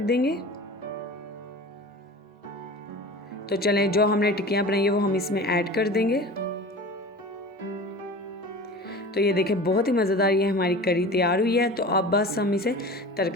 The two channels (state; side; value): normal; both; correlation 0.36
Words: तो चलें, जो हमने टिक्कियाँ बनाई है वो हम इसमें ऐड कर देंगे। तो ये देखें बहुत ही मज़ेदार ये हमारी करी तैयार हुई है। तो अब बस हम इसे